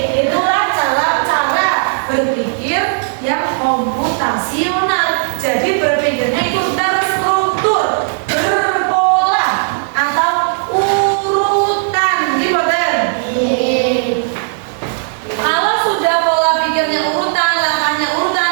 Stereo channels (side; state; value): left; silent; digital silence